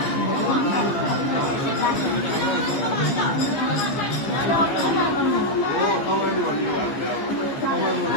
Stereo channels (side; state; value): right; late; 15 ms